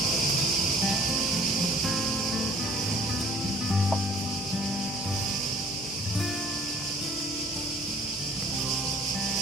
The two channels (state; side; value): normal; both; correlation 0.53